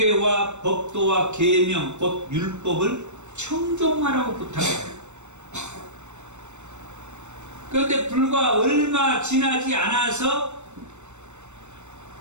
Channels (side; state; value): left; late; 0.83 ms